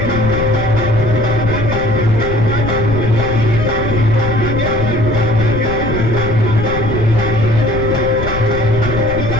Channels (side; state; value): left; noise; rumble, 6 dB below the sound